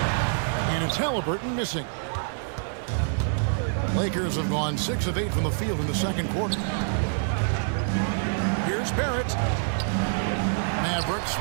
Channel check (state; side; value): silent; left; digital silence